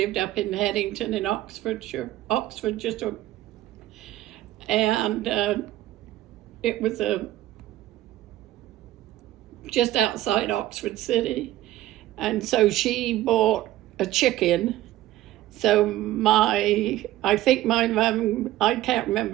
up in Headington in Oxfordshire, and it was just outside Oxford City, and so she bought a chicken. So I think my mum, I can't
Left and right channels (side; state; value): left; quieter; 14.9 dB